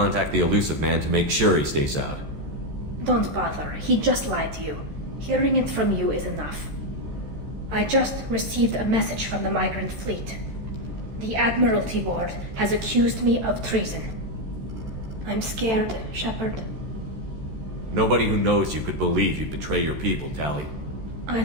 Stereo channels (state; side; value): late; left; 13 ms